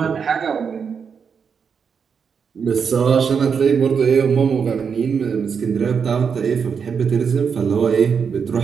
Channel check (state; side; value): quieter; left; 6.4 dB